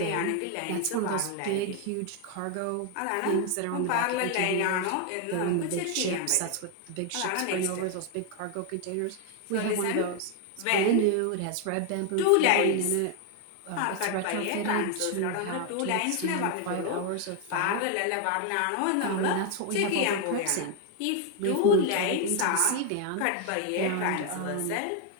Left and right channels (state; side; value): different; both; correlation 0.00